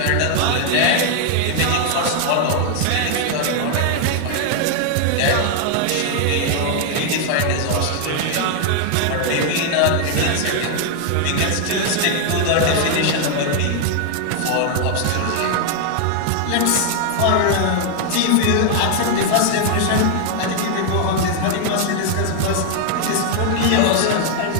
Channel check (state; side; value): different; both; correlation 0.00